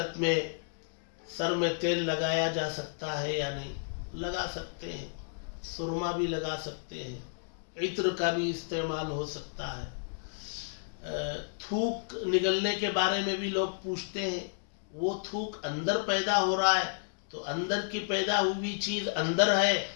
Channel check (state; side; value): silent; right; digital silence